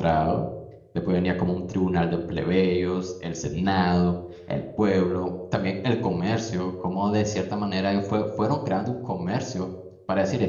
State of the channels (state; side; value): identical; both; correlation 1.00